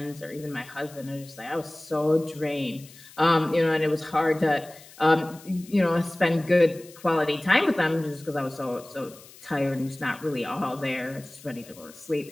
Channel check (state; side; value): noise; left; hiss, 21 dB below the sound